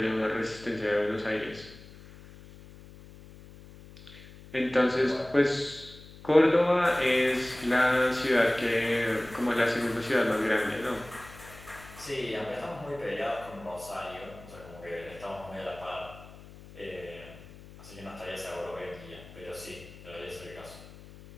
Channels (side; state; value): left; noise; hum, 18 dB below the sound